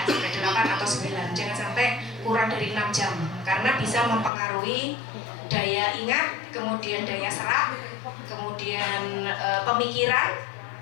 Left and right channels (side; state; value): right; drops out; at 4.3 s